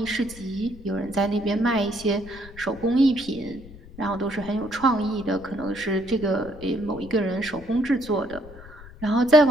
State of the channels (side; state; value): left; noise; rumble, 18 dB below the sound